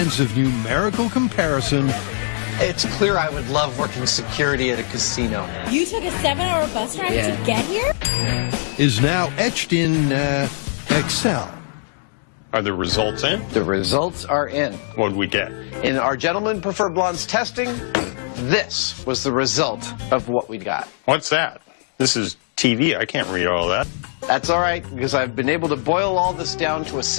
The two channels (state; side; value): silent; right; 63 dB below the other